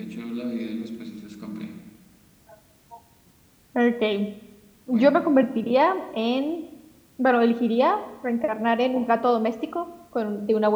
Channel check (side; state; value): both; identical; correlation 1.00